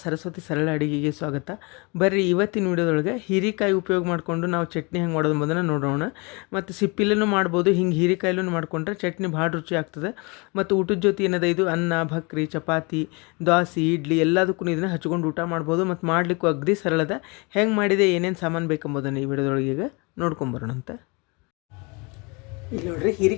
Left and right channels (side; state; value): right; quieter; 29.2 dB